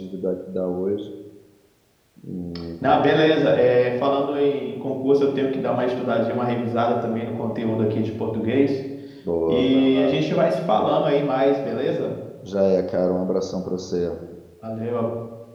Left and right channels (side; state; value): both; identical; correlation 1.00